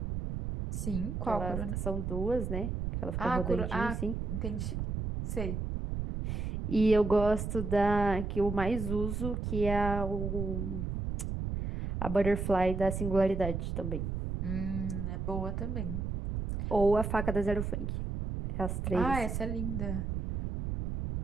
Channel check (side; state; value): right; noise; rumble, 3 dB below the sound